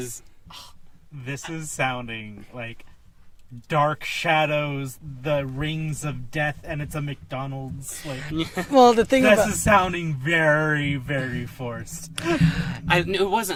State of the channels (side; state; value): both; identical; correlation 1.00